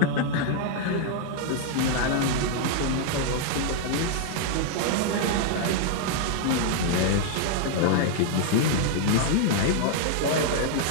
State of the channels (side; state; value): both; different; correlation 0.00